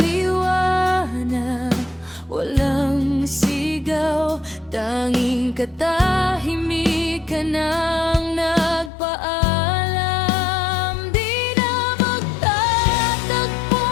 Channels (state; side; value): drops out; right; at 8.9 s